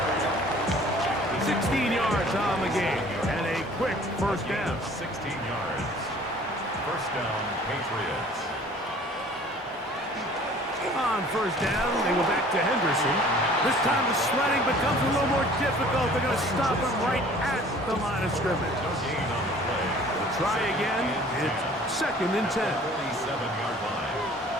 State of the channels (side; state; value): both; normal; correlation 0.51